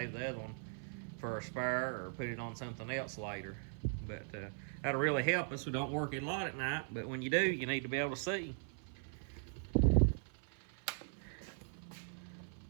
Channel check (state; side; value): silent; left; 51 dB below the other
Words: the other one for a spare or put it on something else later. But that'll really help us. We don't work it a lot at night, but when you do, you need to be able to see.